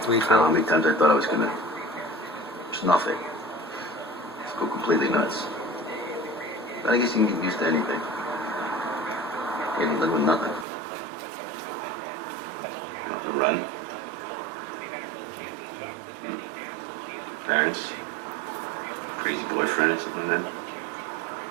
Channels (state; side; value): drops out; left; at 10.7 s